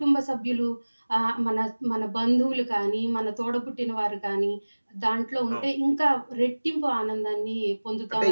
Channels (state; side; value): inverted; both; correlation -1.00